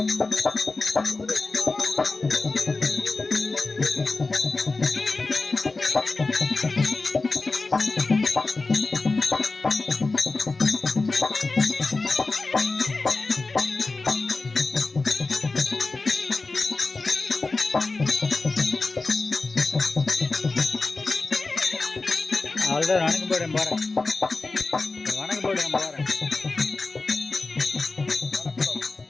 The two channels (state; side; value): quieter; right; 3.6 dB